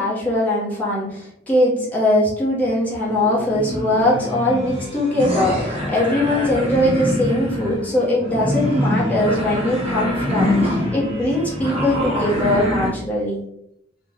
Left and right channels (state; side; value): normal; both; correlation 0.52